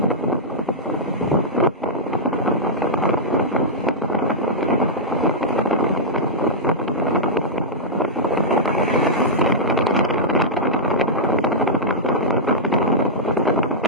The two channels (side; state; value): both; normal; correlation -0.09